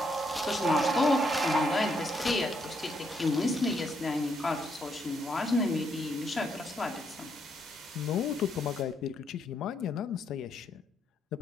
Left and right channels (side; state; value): both; normal; correlation 0.75